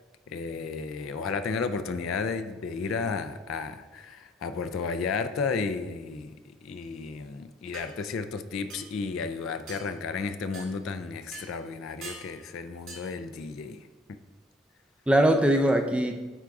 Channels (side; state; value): both; normal; correlation 0.58